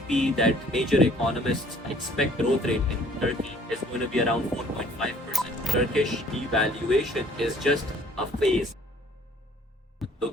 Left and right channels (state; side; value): normal; both; correlation 0.57